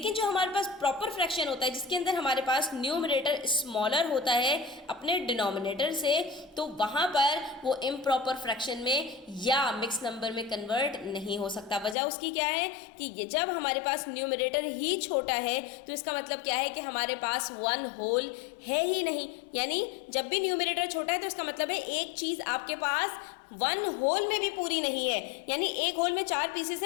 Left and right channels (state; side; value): drops out; right; at 12.0 s